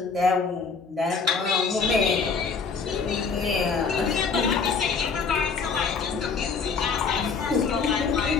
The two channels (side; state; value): right; quieter; 5.2 dB